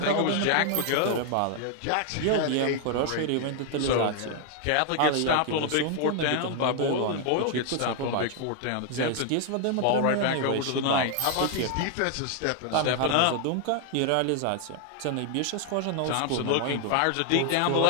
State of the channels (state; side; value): different; both; correlation 0.00